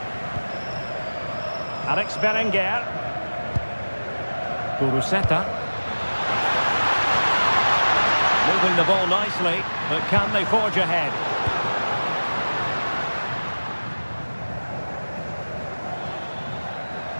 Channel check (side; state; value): both; inverted; correlation -1.00